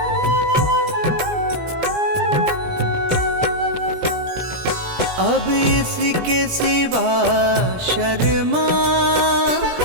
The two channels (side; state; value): left; late; 17 ms